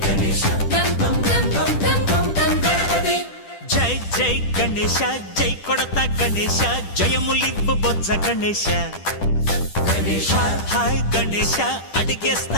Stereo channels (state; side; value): late; right; 10 ms